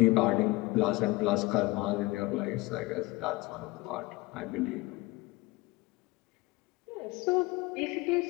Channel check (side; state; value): right; quieter; 21.7 dB